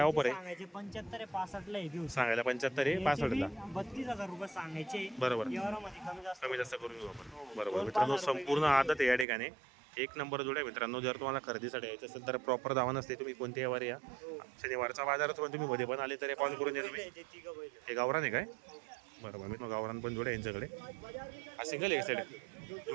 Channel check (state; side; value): drops out; left; at 9.2 s